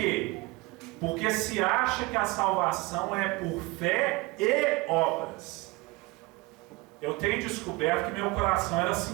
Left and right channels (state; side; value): quieter; left; 23.9 dB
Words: Porque se acha que a salvação é por fé e obras. Eu tenho descoberto que meu coração era